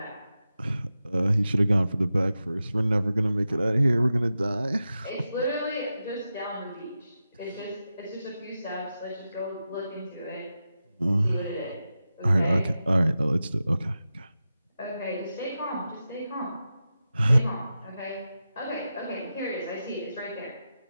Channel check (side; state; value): both; inverted; correlation -0.91